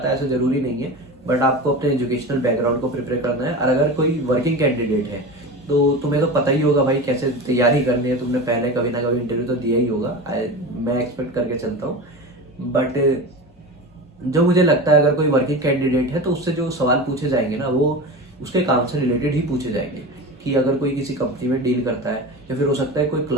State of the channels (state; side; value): normal; both; correlation 0.28